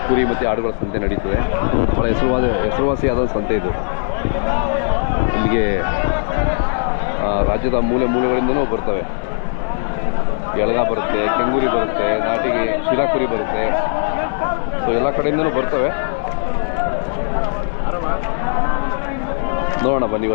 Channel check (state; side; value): silent; right; 61 dB below the other